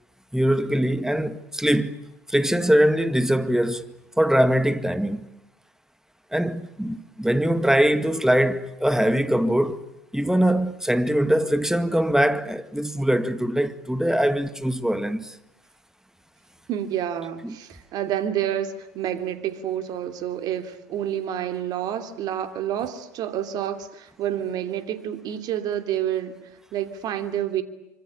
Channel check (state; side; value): normal; both; correlation 0.86